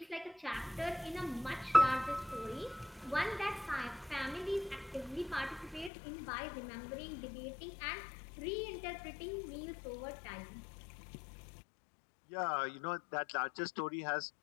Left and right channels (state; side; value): drops out; right; at 5.9 s